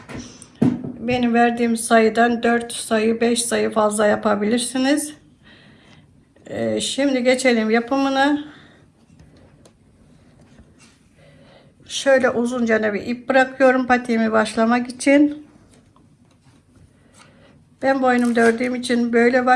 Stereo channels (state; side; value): identical; both; correlation 1.00